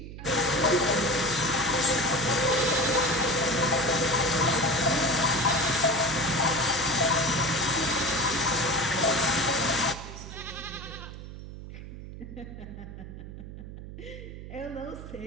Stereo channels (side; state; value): right; noise; hum, 12 dB below the sound